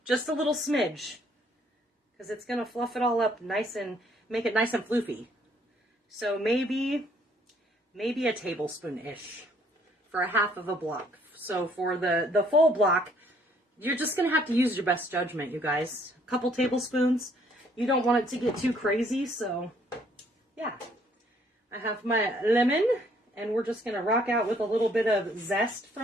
Just a little smidge. Because it's going to fluff it all up nice and make it nice and floofy. So maybe a tablespoon-ish for a half of a block. So for the full block, you're just going to have to use your best judgment, you guys. A couple tablespoons. You don't want it to get too crazy, so yeah. I have my lemon, and we're just going to rock out with a little bit of zest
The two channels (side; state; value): both; normal; correlation 0.65